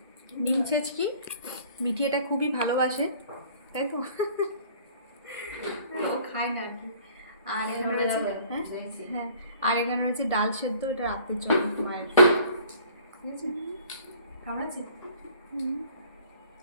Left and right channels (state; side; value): inverted; both; correlation -0.52